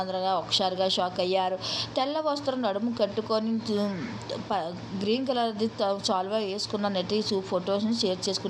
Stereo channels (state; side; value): identical; both; correlation 1.00